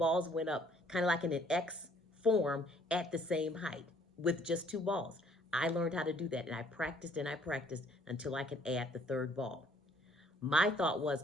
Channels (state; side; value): normal; both; correlation 0.61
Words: went up kind of like in an X form at the same height with just two balls. I learned how to do that, and I practiced until I could add the third ball. My thought was,